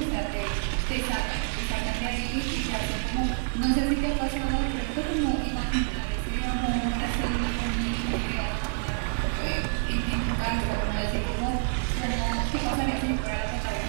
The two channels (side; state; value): left; silent; digital silence